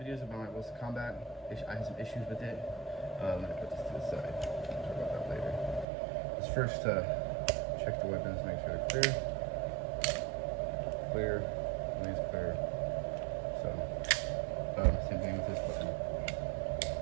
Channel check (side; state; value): left; drops out; at 5.9 s